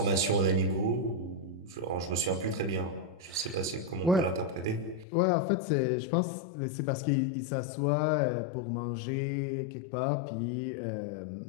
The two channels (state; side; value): drops out; right; at 5.1 s